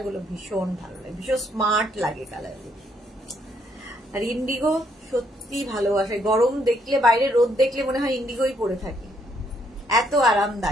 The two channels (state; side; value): normal; both; correlation 0.71